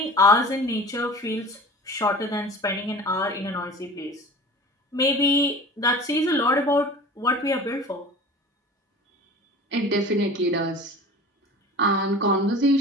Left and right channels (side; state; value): both; normal; correlation 0.39